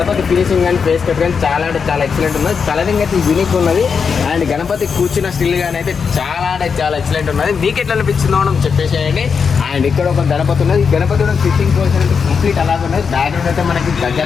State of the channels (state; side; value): quieter; right; 6.0 dB